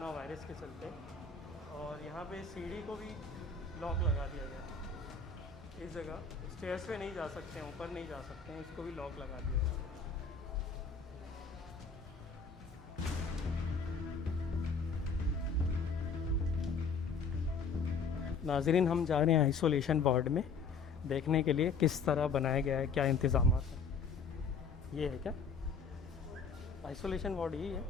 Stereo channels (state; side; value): quieter; right; 5.0 dB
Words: वायरस के चलते। और यहाँ पे सीढ़ी को भी लॉक लगा दिया गया है। इस जगह स्टेयर्स पे नहीं जा सकते हैं, ऊपर नहीं जा सकते हैं, इसको भी लॉक लगा दिया गया है। नाजरीन, हम जा रहे हैं आइसोलेशन वार्ड में देखने के लिए किस तरह बनाया गया है, क्या इंतज़ाम हैं। ये है क्या आइसोलेशन वार्ड? यही है,